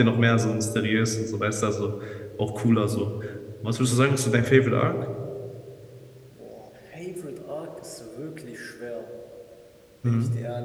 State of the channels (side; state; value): both; identical; correlation 1.00